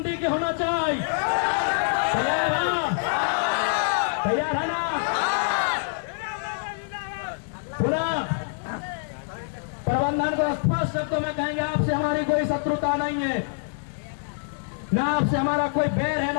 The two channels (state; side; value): silent; right; 61 dB below the other